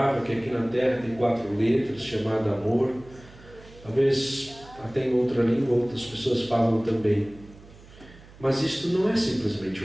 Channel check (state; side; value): noise; right; hum, 22 dB below the sound